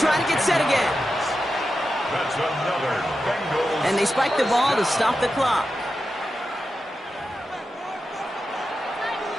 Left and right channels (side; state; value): both; normal; correlation 0.90